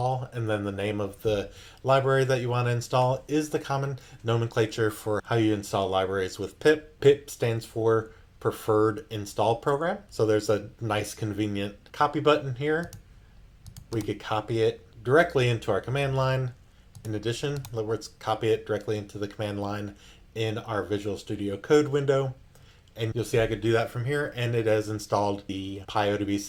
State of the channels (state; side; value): identical; both; correlation 1.00